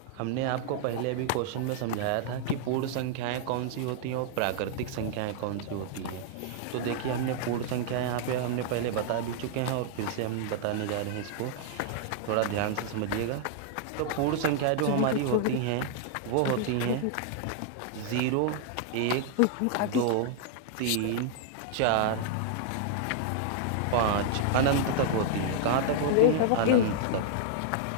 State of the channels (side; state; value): both; different; correlation -0.01